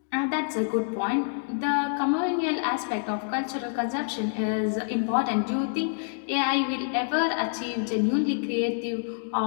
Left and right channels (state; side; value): silent; right; digital silence